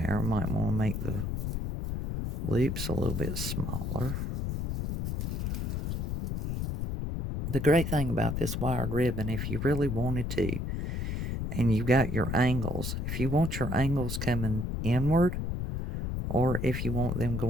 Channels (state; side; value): noise; left; rumble, 2 dB below the sound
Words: I might want to make the loops a little bit smaller. The great thing about this wired ribbon, if you really wanted to, and you got your angles, if you want your angles coming inward, or if you want them